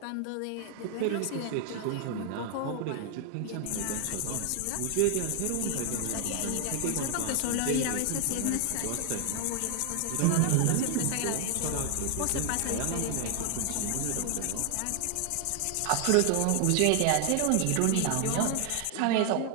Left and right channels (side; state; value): both; different; correlation 0.00